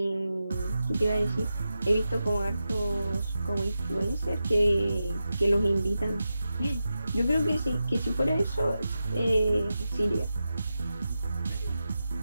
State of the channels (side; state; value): both; inverted; correlation -0.91